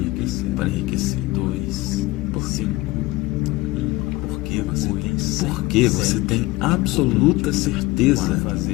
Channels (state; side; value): quieter; right; 20.3 dB